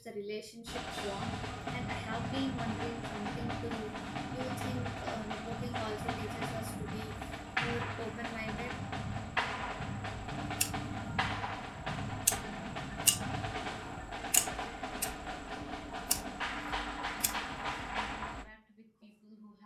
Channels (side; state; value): both; identical; correlation 1.00